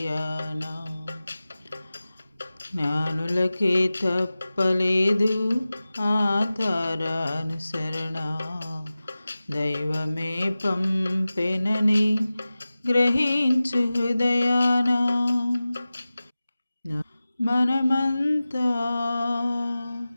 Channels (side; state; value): both; inverted; correlation -0.96